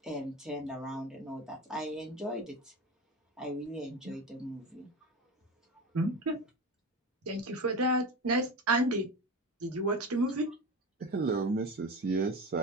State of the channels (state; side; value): normal; both; correlation 0.26